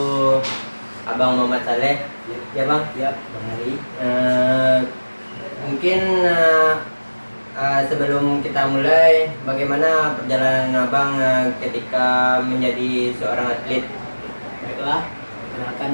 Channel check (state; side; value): inverted; both; correlation -1.00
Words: Abang Muhammad Saleh. Ya Bang? Ya, Bang Ari. Mungkin sebelum kita mulai, bagaimana perjalanan Abang ketika menjadi seorang atlet? Baiklah, perkenalkan